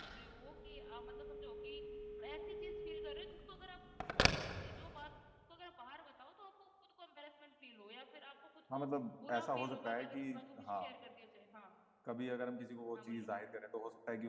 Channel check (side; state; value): both; identical; correlation 1.00